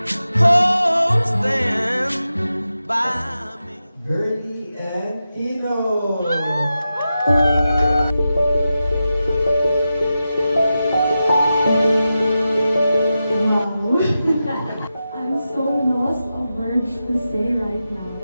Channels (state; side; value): inverted; both; correlation -0.91